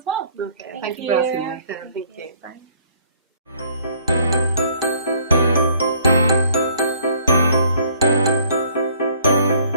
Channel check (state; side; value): inverted; both; correlation -0.60